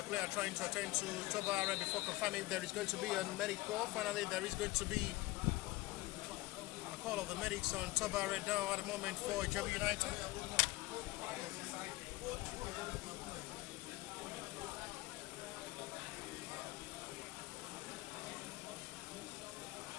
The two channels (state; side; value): quieter; right; 20.2 dB